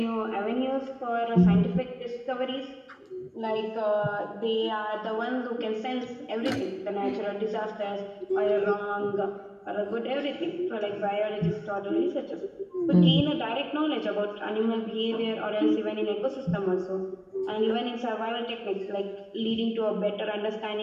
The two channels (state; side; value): identical; both; correlation 1.00